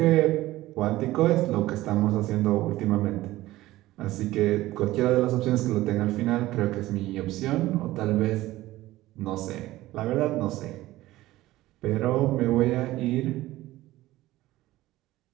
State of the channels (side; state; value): left; quieter; 16.7 dB